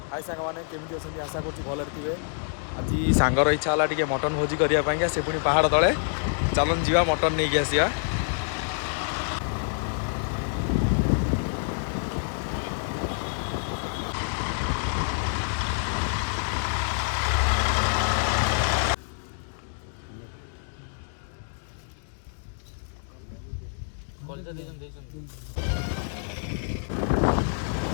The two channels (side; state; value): right; silent; digital silence